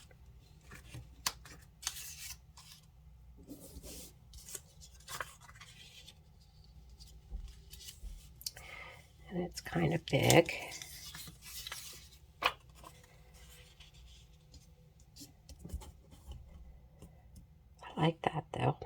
And it's kind of big. I like that though.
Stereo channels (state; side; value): identical; both; correlation 1.00